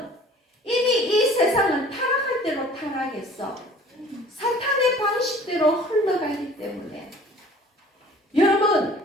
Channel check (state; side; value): normal; both; correlation 0.49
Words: 이미 이 세상은 타락할 대로 타락했어. 사탄의 방식대로 흘러가기 때문에 여러분,